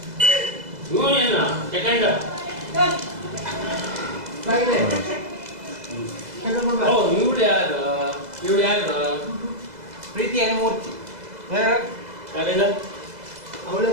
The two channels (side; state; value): left; late; 2.0 ms